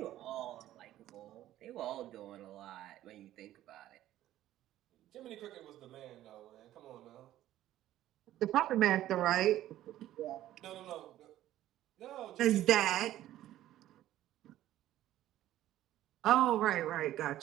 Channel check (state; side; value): quieter; left; 13.5 dB